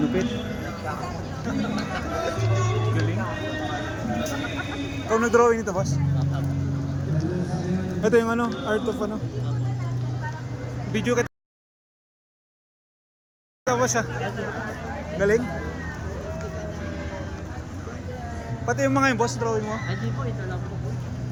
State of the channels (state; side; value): identical; both; correlation 1.00